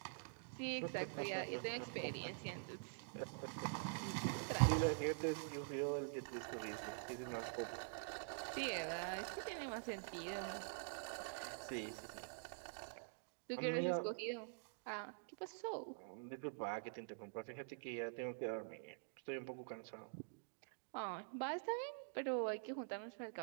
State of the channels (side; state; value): left; silent; digital silence